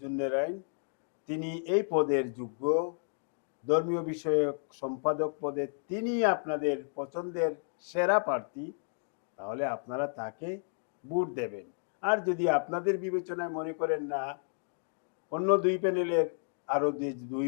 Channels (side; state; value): right; silent; digital silence